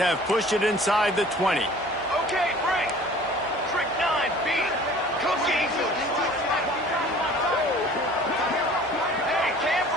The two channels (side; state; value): both; normal; correlation 0.48